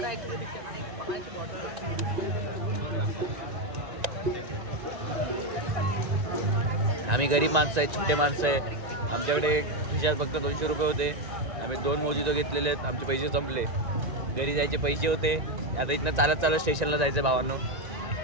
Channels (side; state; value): left; late; 1.9 ms